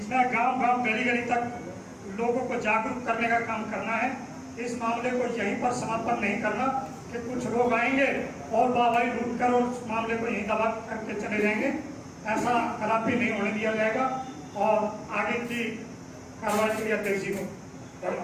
है। गांव गांव गली गली तक लोगों को जागरूक करने का काम करना है। इस मामले को यहीं पर समापन नहीं करना कि कुछ लोग आएंगे और वाहवाही लूट कर और उस मामले को यहीं दबा करके चले जाएंगे। ऐसा कदापि नहीं होने दिया जाएगा और आगे की कार्रवाई के लिए अध्यक्ष जी को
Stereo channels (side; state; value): both; identical; correlation 1.00